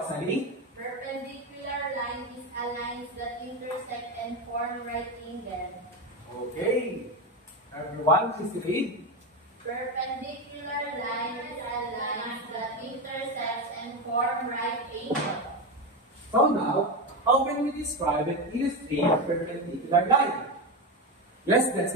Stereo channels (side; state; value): both; normal; correlation 0.15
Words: Perpendicular line is a line that intersect and form right angle. Okay. Everyone, please read. Perpendicular line is a line that intersects and form right angle. So now, how can we describe and illustrate a perpendicular line? Yes,